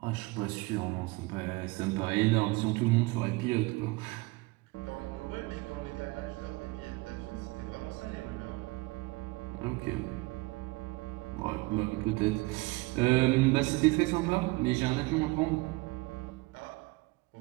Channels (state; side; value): quieter; left; 23.5 dB